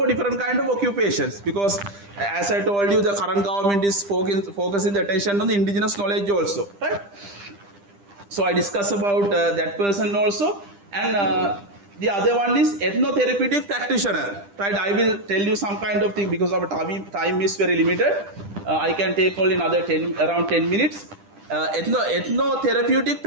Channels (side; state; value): left; late; 10 ms